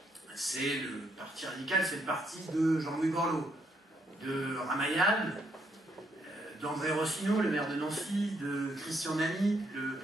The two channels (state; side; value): normal; both; correlation 0.74